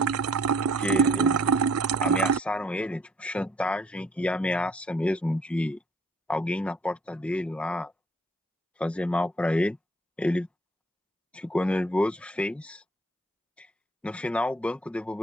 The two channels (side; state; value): both; normal; correlation 0.58